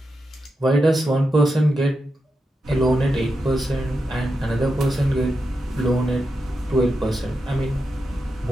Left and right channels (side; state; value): both; normal; correlation 0.87